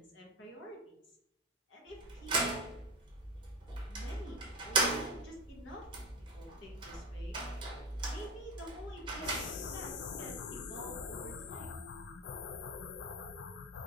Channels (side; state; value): both; normal; correlation 0.18